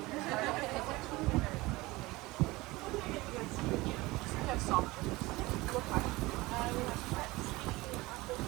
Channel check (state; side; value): quieter; left; 21.0 dB